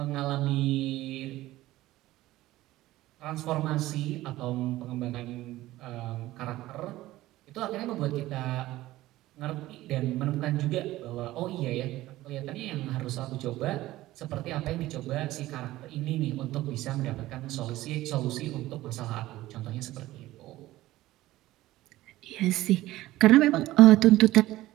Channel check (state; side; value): quieter; left; 16.5 dB